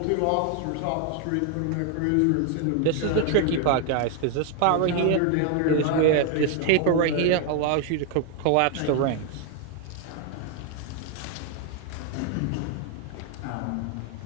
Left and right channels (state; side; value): different; both; correlation 0.01